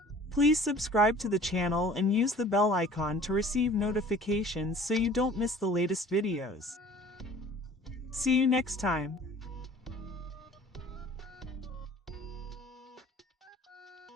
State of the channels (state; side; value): normal; both; correlation 0.49